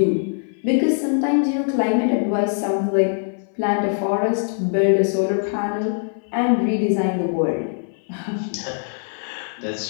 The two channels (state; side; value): silent; right; 58 dB below the other